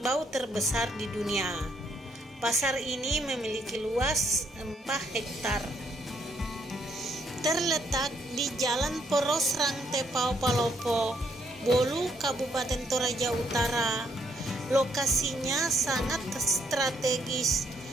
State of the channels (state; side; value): normal; both; correlation 0.71